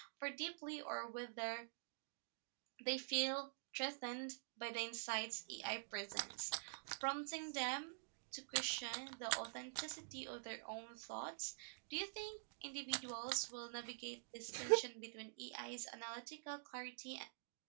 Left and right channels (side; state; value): left; silent; digital silence